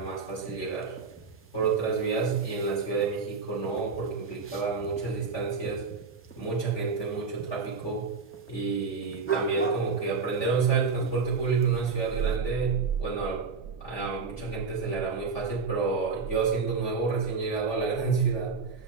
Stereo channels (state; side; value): quieter; left; 4.8 dB